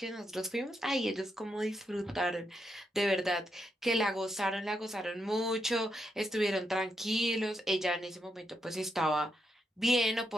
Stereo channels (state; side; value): normal; both; correlation 0.82